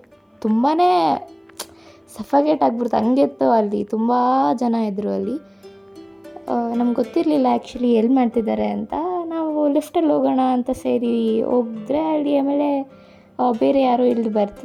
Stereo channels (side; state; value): both; identical; correlation 1.00